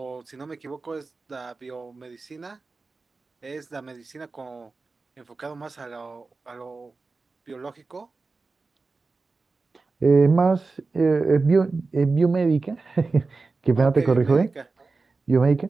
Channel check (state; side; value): quieter; left; 3.9 dB